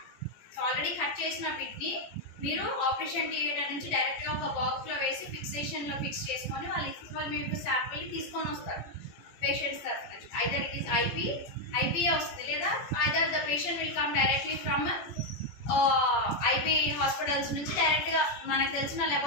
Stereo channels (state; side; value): late; right; 17 ms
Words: So already cut chesina bit ni మీరు operation theatre నుంచి డైరెక్ట్గా ఒక బాక్స్లో వేసి ఫిక్సేషన్లో ఫిక్స్ చేసుకొని వాళ్ళు మీకు శాంపిల్ తీసుకొని వస్తారు పేషెంట్స్ తరఫు నుంచి. ఐదర్ ఇట్ ఈస్ ఐపీఏ వస్తుంది, లేదా either the patient will come directly from IP hospitals నుంచి డైరెక్ట్గా మనకు తెలిసిన